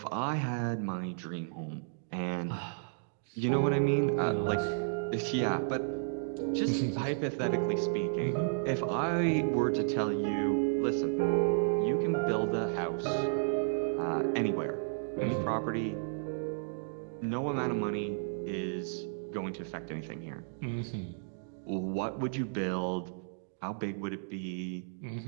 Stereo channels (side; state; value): left; silent; digital silence